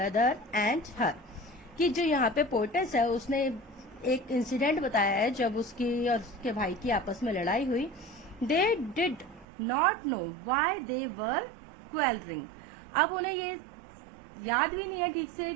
and her. कि जो यहाँ पे पोएटेस है उसने एक इंसिडेंट बताया है जब उसकी और उसके भाई की आपस में लड़ाई हुई. They did not know why they were quarrelling. अब उन्हें ये याद भी नहीं है ठीक से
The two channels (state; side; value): drops out; left; at 9.5 s